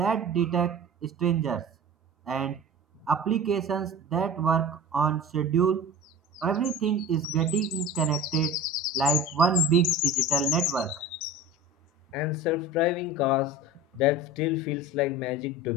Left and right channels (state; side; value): normal; both; correlation 0.35